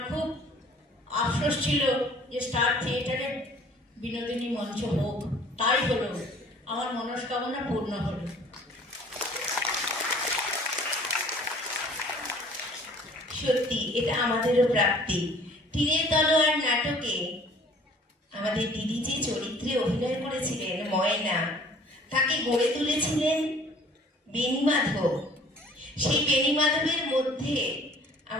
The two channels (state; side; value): normal; both; correlation 0.52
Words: খুব আফসোস ছিল যে স্টার থিয়েটারে বিনোদিনী মঞ্চ হোক। তাই হলো, আমার মনস্কামনা পূর্ণ হলো। সত্যি এটা আমাদেরও প্রাপ্তি। তীরের তলোয়ার নাটকে আমাদের দিদি যে চরিত্রে অভিনয় করেছিলেন ময়না, তাকে গড়ে তুলেছিলেন বেণীমাধব। সেই বেণীমাধবের মধ্যে